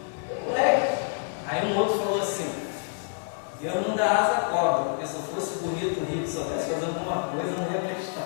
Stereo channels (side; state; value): right; silent; 60 dB below the other